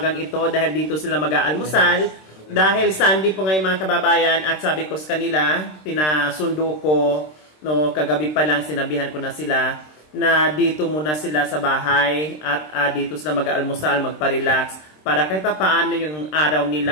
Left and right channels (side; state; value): right; late; 26 ms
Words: ito dahil dito sila mag-aalmusal. Dahil Sunday po ngayon mga kababayan at sabi ko sa kanila, pinasundo ko, no, kagabi pa lang sinabihan ko na sila na dito muna sila sa bahay at dito sila mag-aalmusal, magpa-relax para kahit pa paano yung araw